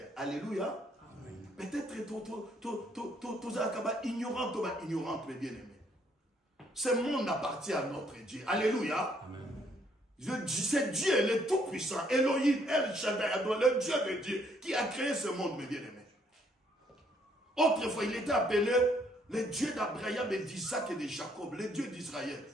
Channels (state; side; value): normal; both; correlation 0.68